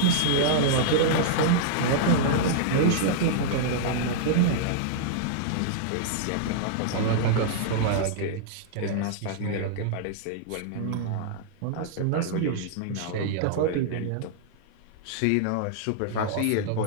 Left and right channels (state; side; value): different; both; correlation -0.01